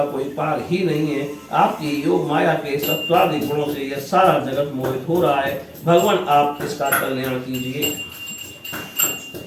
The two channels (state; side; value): identical; both; correlation 1.00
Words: कोई पार ही नहीं है। आपकी योग माया के सत्वादि गुणों से यह सारा जगत मोहित हो रहा है। भगवान आप इसका कल्याण कीजिए।